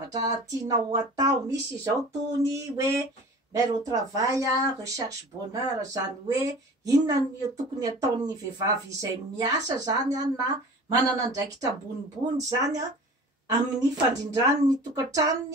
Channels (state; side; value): normal; both; correlation 0.41